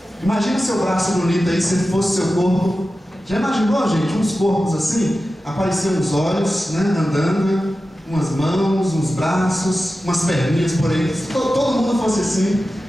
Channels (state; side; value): normal; both; correlation 0.93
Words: Imagina seu braço bonito aí, se fosse seu corpo. Já imaginou, gente, uns corpos assim? Apareciam uns olhos, né, andando, umas mãos, uns braços, umas perninhas por aí. Se todo mundo fosse assim.